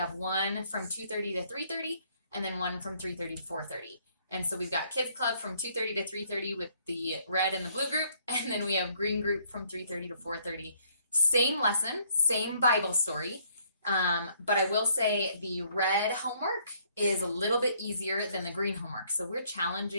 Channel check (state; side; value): inverted; both; correlation -0.66